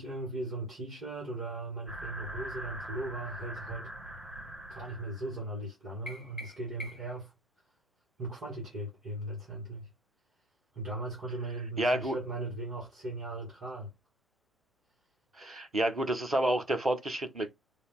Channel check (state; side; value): normal; both; correlation 0.53